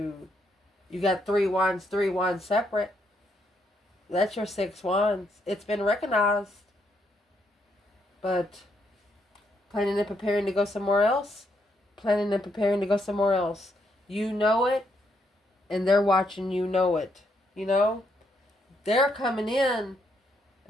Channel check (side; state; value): both; normal; correlation 0.76